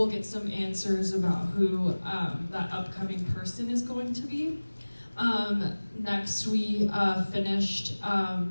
get some answers about who that upcoming person is going to be. Next, we finished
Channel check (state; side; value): inverted; both; correlation -1.00